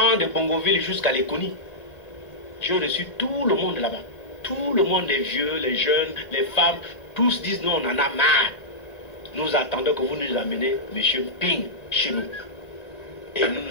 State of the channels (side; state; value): right; late; 1.9 ms